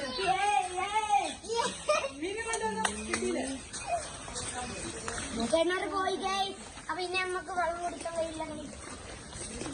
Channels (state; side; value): identical; both; correlation 1.00